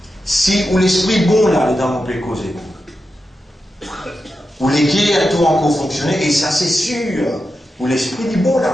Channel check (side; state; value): both; normal; correlation 0.89